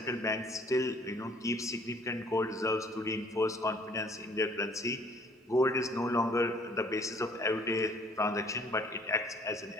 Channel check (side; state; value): both; normal; correlation 0.58